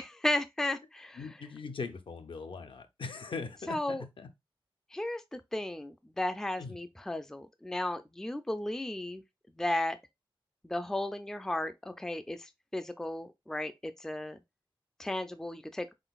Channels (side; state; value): both; normal; correlation 0.91